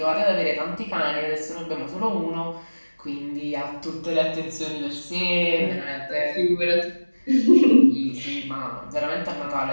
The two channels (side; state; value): both; inverted; correlation -1.00